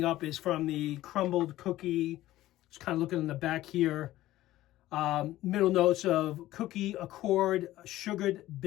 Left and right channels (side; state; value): right; quieter; 15.4 dB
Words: up is from the crumbled cookie. Just kind of looking in the back here. Middle notes of cookie accord, sugared